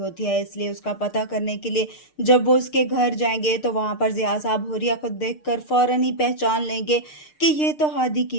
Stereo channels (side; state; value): right; late; 6.6 ms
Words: है, इसलिए उसका पता करने के लिए जब वो उसके घर जाएंगे तो वहां पर जिया साहब हुरिया को देखकर फौरन ही पहचान लेंगे कि ये तो हादी